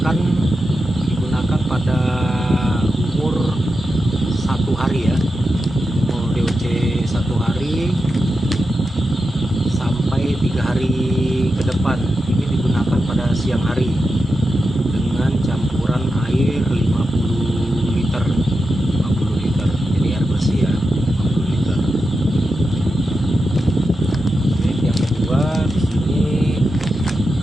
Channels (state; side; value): normal; both; correlation 0.89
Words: pada umur 1 hari ya. Umur DOC 1 hari sampai 3 hari ke depan. Ini digunakan pada siang hari dengan campuran air 50 liter. Jadi air bersih ya, 50 liter. Oke, yang kedua di sini